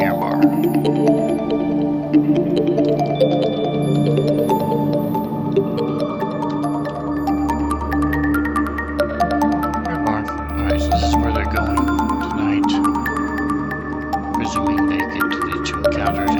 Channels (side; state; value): both; identical; correlation 1.00